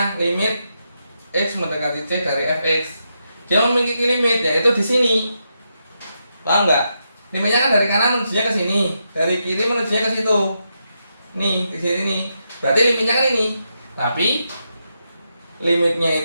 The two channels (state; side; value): inverted; both; correlation -0.83